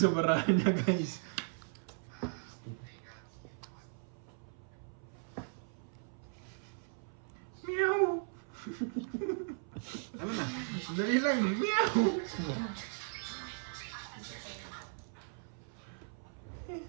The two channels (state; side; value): silent; left; 53 dB below the other